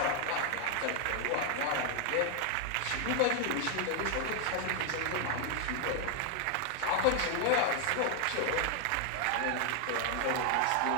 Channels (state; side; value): different; both; correlation 0.00